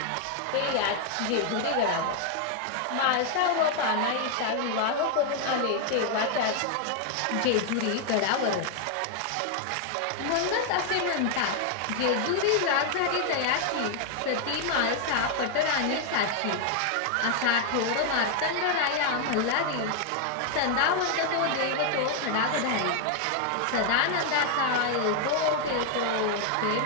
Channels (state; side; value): different; both; correlation 0.00